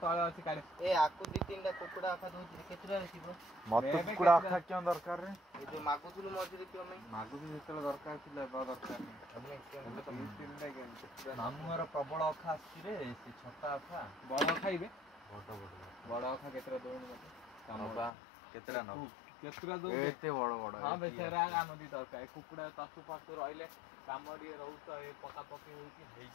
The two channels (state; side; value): drops out; right; at 18.1 s